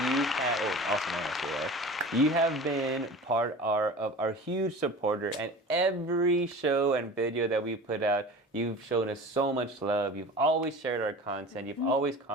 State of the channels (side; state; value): both; normal; correlation 0.37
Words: you have been part of our huge supporter, and every show and video that we put out, you've shown us so much love. You've always shared our content. You've always